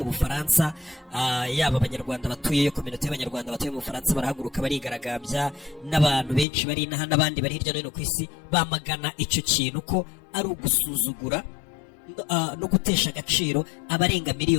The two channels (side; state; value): right; drops out; at 6.5 s